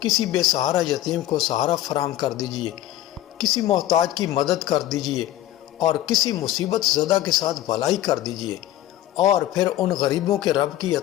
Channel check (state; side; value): quieter; right; 13.8 dB